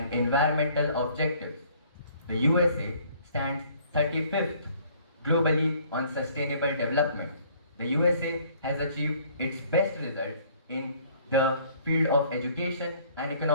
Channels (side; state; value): both; inverted; correlation -0.58